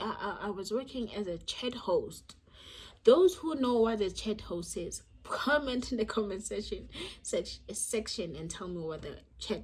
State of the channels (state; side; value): identical; both; correlation 1.00